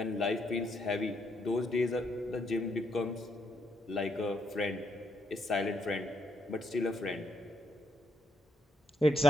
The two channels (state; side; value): normal; both; correlation 0.75